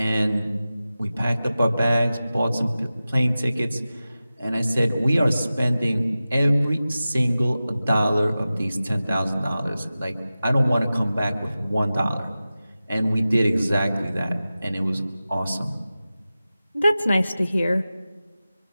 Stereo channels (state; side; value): inverted; both; correlation -0.95